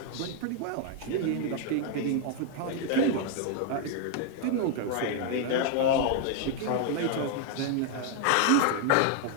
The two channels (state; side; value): different; both; correlation 0.00